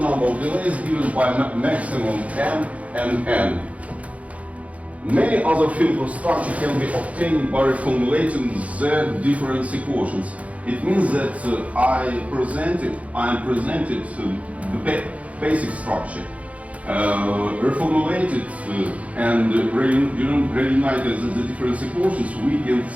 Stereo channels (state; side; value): late; left; 0.066 ms